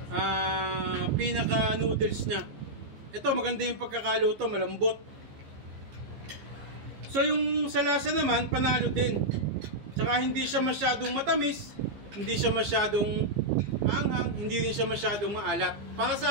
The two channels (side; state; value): left; late; 15 ms